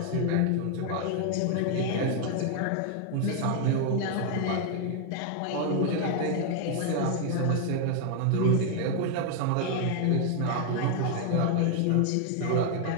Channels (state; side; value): different; both; correlation 0.00